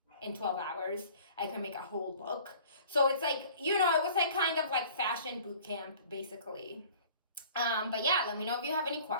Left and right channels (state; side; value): inverted; both; correlation -0.49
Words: in 12 hours, I can make a whole look. So it's like, you know, it was like kind of like fashion boot camp basically. But yeah, let me know if you have any